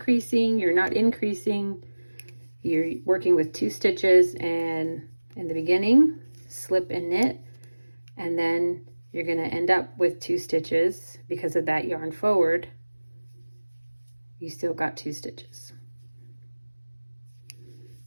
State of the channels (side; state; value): both; inverted; correlation -1.00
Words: you're not increasing, you're working with 2 stitches, and in the beginning, slip and knit. And then you're going to end up with 2 stitches because of that yarn forward. You still got 2 stitches.